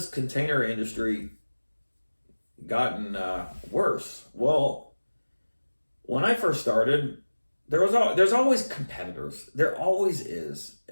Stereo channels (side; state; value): both; inverted; correlation -1.00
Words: container industry gotten worse? Well, when I first started, there's always competitors. There always is.